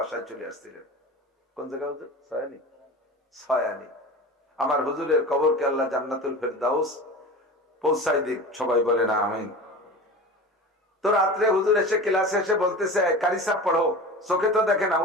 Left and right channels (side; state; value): both; normal; correlation 0.33